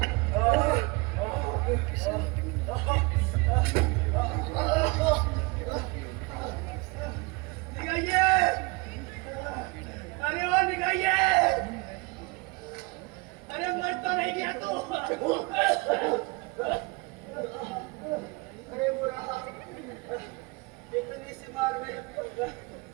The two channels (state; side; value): quieter; left; 26.7 dB